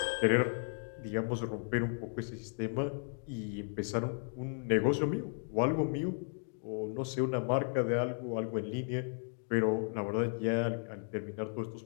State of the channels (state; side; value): silent; right; 55 dB below the other